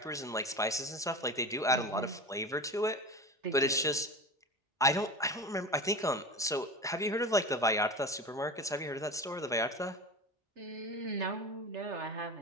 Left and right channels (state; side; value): normal; both; correlation 0.29